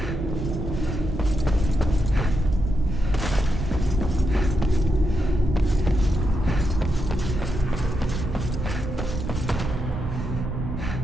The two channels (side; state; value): right; noise; rumble, 5 dB below the sound